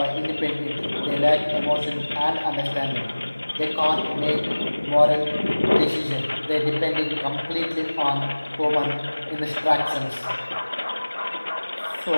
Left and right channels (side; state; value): both; inverted; correlation -1.00